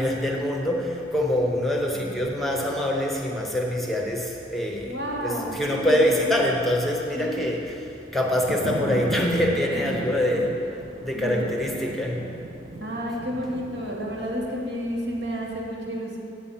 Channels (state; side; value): normal; both; correlation 0.64